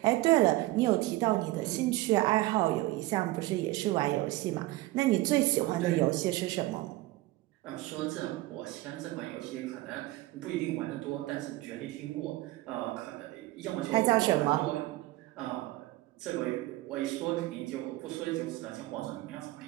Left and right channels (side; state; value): left; quieter; 18.6 dB